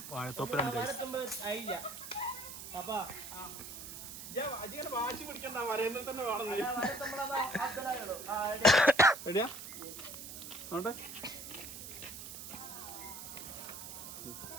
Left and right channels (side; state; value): right; noise; hiss, 10 dB below the sound